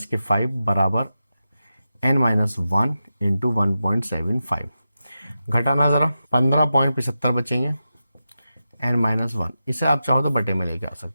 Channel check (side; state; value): both; inverted; correlation -0.91